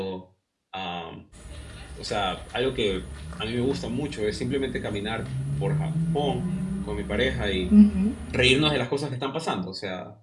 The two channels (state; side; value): identical; both; correlation 1.00